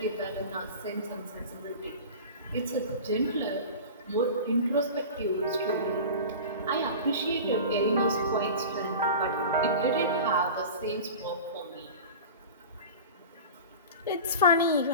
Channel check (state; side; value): inverted; both; correlation -0.34